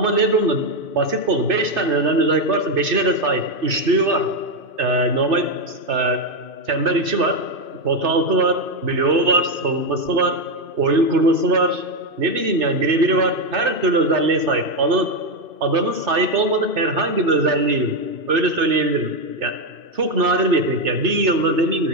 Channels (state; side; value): late; left; 2.6 ms